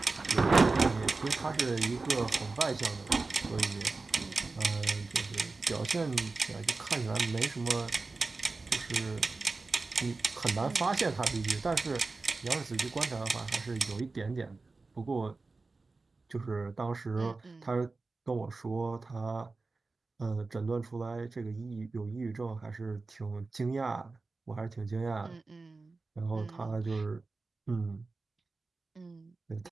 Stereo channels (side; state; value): left; quieter; 3.7 dB